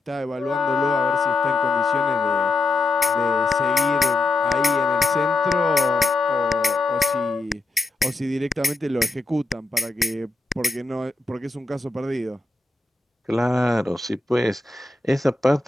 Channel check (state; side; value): quieter; right; 3.3 dB